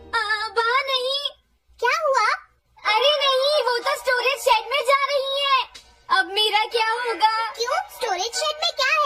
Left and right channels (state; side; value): identical; both; correlation 1.00